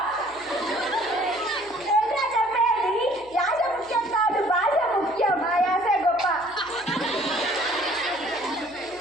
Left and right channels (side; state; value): left; noise; hum, 27 dB below the sound